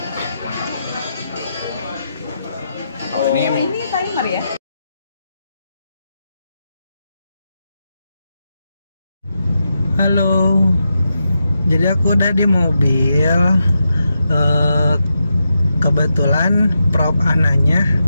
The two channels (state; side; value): inverted; both; correlation -0.86